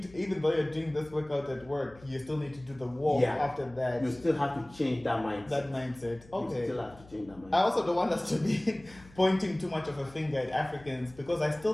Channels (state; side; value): noise; left; hum, 23 dB below the sound